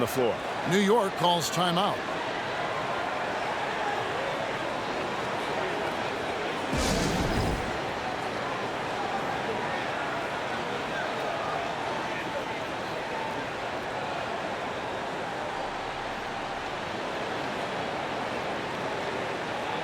floor. New York calls timeout.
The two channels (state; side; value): identical; both; correlation 1.00